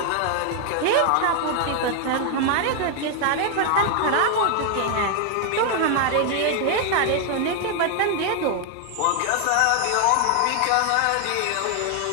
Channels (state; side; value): different; both; correlation 0.00